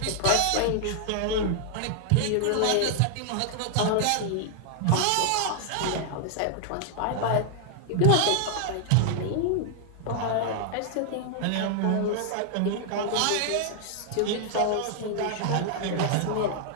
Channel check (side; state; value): both; different; correlation 0.00